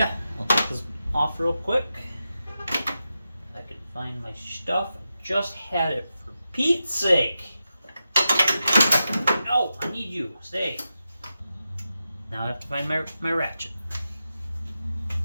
I'll take this off real quick. If I can find my stuff. I just had it, for Pete's sake. No, I need you. Stay. Now I have to find my ratchet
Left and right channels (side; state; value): both; inverted; correlation -0.90